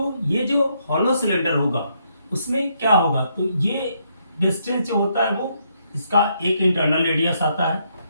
ये जो हॉलो सिलेंडर होगा उसमें क्या होगा, तो ये डिस्टेंस जो होता है वो इसका एक इंटरनल रेडियस आता है।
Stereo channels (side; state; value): both; inverted; correlation -0.75